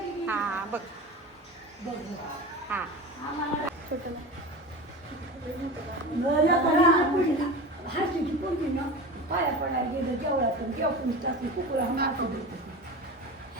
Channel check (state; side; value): normal; both; correlation 0.30